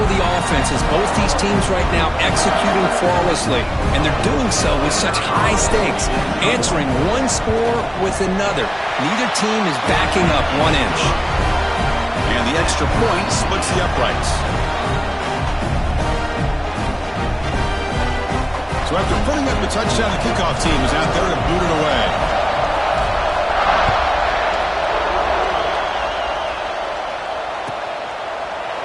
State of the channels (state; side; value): identical; both; correlation 1.00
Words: the offenses. Both these teams right now executing flawlessly, and they're doing so with such high stakes, answering one score with another. Neither team is backing up 1 inch. And the extra point splits the uprights. So after putting up the touchdown, the kickoff team is out there to boot it away.